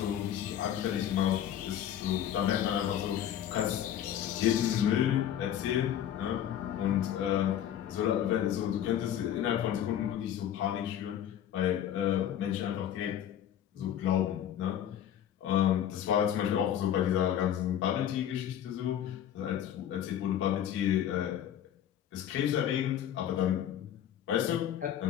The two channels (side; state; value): right; quieter; 10.5 dB